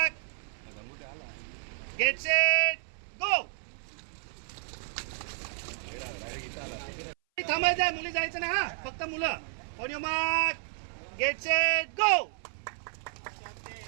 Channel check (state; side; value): silent; left; 57 dB below the other